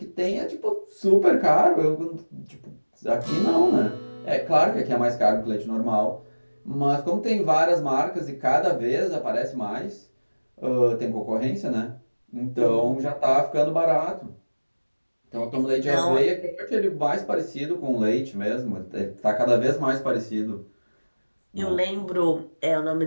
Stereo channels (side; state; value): both; inverted; correlation -1.00